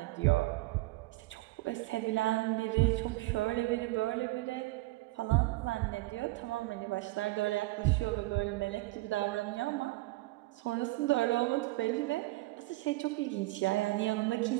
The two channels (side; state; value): left; quieter; 20.9 dB